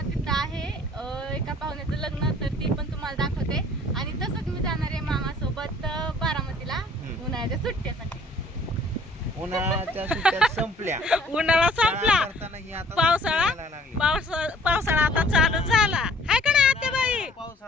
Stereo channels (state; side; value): normal; both; correlation 0.55